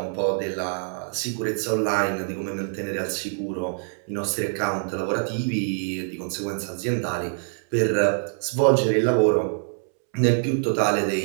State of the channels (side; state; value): left; silent; 62 dB below the other